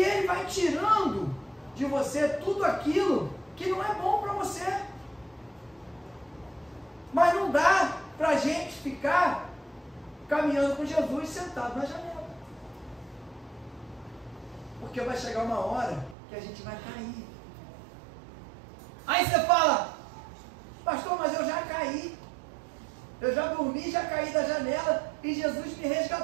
Ele vai tirando de você tudo aquilo que não é bom para você. Mas não dá para a gente ficar caminhando com Jesus sentado na janela. Porque vai chegar uma hora que a gente vai cair. Aí você fala, pastor, mas eu já caí. Eu já dormi, já caí da janela e Jesus me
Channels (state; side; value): drops out; left; at 16.2 s